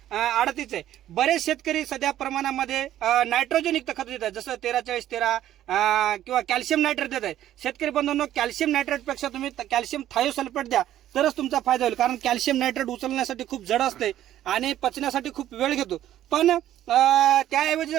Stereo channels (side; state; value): left; quieter; 12.4 dB